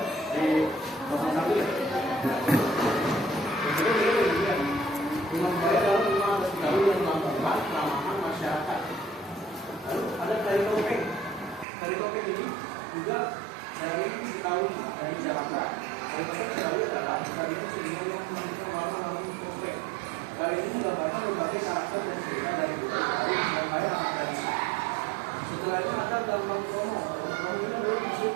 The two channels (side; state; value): left; drops out; at 11.7 s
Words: Sari Topeng ini juga dari Betawi, dari Jakarta. Sari Topeng Betawi adalah tarian seniman yang menggunakan warna-warna topeng. Tarian ini menggambarkan berbagai karakter dan cerita dari Betawi yang kaya akan tradisi. Setelah itu ada Gambang Kromo. Gambang ini adalah museum